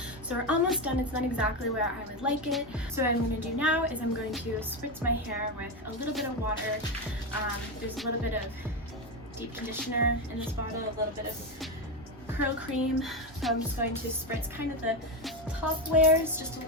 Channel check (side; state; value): both; normal; correlation 0.12